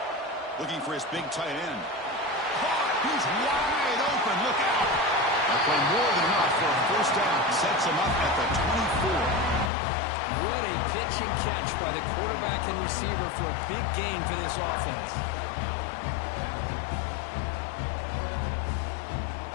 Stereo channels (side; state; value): right; drops out; at 9.7 s